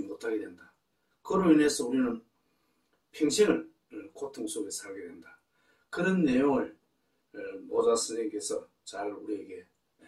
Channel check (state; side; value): identical; both; correlation 1.00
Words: 못하게 된다. 그로 인해서 우리는 평생을 고통 속에 살게 된다. 그런 내용을 모자 선생님께서 잘 우리에게